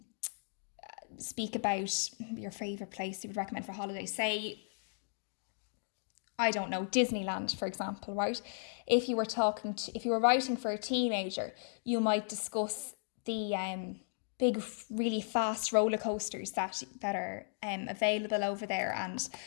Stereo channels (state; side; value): silent; right; digital silence